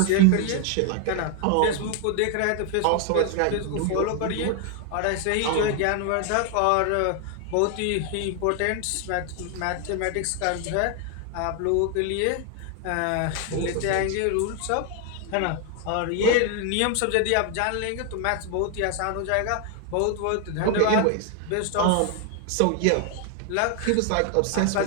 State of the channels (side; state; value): both; different; correlation 0.00